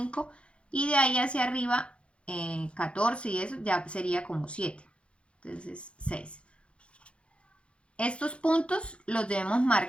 y de ahí hacia arriba 14 y eso ya sería como 7. Entonces 6. Estos puntos los debemos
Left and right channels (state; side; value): late; right; 0.059 ms